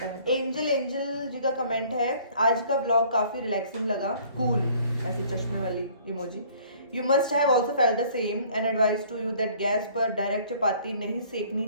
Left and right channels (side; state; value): both; inverted; correlation -0.55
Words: है। एंजल जी का कमेंट है, आज का व्लॉग काफी रिलैक्सिंग लगा, कूल, ऐसे चश्मे वाली emoji. You must have also felt the same and advice to you that gas पर डायरेक्ट चपाती नहीं सेकनी